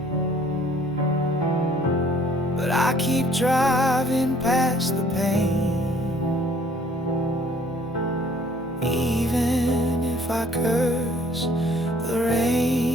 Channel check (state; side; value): normal; both; correlation 0.58